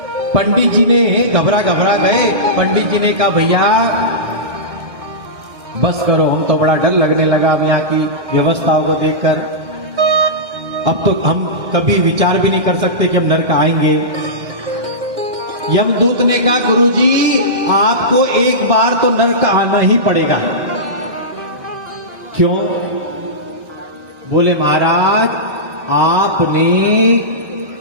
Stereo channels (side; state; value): left; late; 1.6 ms